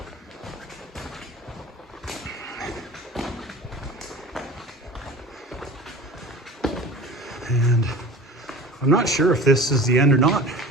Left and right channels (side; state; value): both; normal; correlation 0.39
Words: And I'm not sure if this is the end or not.